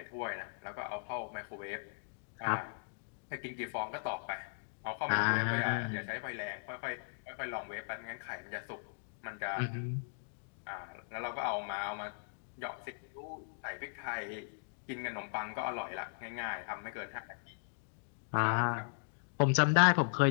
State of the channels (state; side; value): silent; right; digital silence